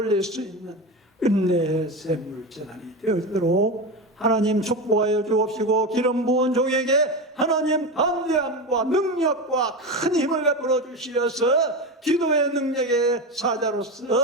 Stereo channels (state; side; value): normal; both; correlation 0.20